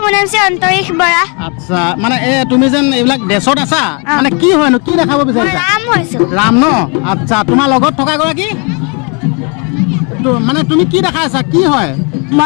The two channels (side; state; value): right; quieter; 34.4 dB